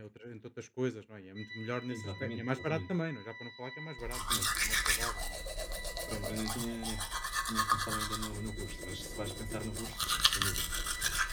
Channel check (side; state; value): both; identical; correlation 1.00